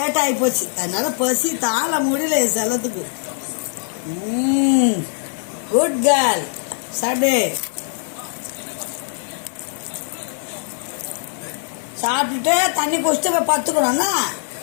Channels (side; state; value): right; silent; digital silence